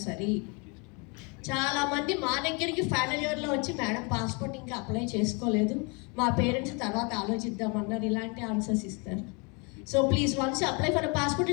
చాలామంది మా దగ్గరికి ఫైనల్ ఇయర్లో వచ్చి madam passport ఇంకా అప్లై చేసుకోలేదు, మా పేరెంట్స్ తర్వాత ఆలోచిద్దామన్నారు, ఇలాంటి ఆన్సర్స్ ఇస్తారు. So please once apply for a passport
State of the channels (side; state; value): right; quieter; 32.1 dB